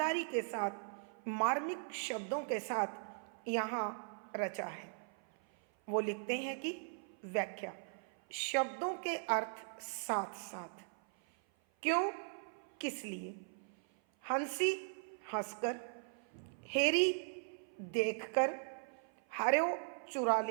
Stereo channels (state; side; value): silent; left; 52 dB below the other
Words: के साथ, मार्मिक शब्दों के साथ यहाँ रचा है। वो लिखते हैं कि व्याख्या। शब्दों के अर्थ साथ साथ। क्यों, किस लिए। हंसी, हंसकर। हेरी, देखकर। हर्यो, चुरा